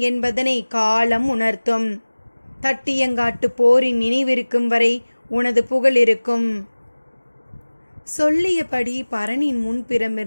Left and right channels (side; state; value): both; inverted; correlation -1.00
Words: என்பதனை காலம் உணர்த்தும். தட்டியங்காட்டு போரின் நினைவிருக்கும் வரை உனது புகழ் இருக்கும். சொல்லியபடி பரணின்